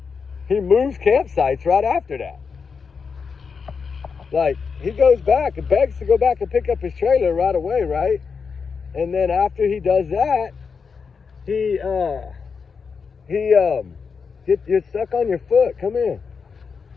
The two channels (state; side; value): quieter; right; 5.6 dB